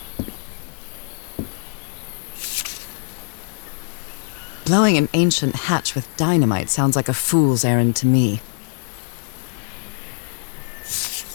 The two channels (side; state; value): right; silent; digital silence